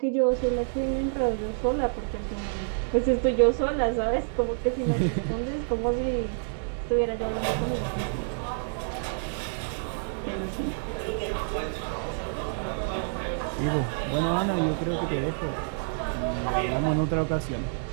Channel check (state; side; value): silent; left; digital silence